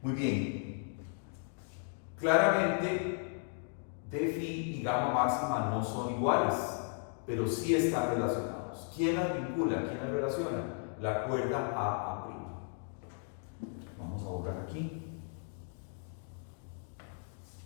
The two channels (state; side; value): silent; right; 54 dB below the other